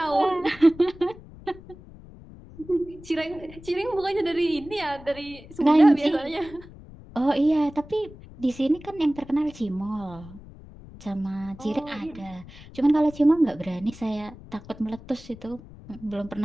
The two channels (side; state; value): left; noise; rumble, 18 dB below the sound